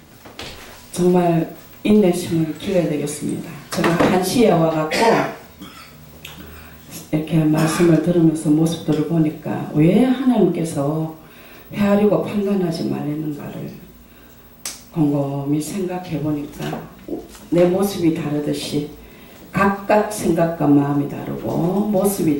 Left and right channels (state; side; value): identical; both; correlation 1.00